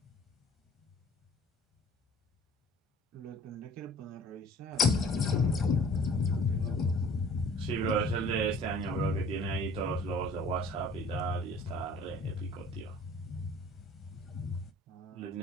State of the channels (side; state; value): both; normal; correlation 0.50